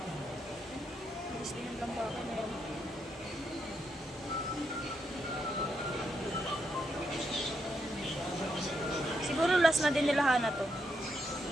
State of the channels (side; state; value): both; normal; correlation 0.80